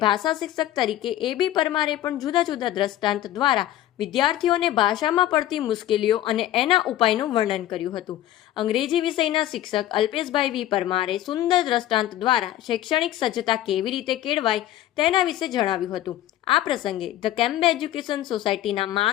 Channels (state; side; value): quieter; right; 13.5 dB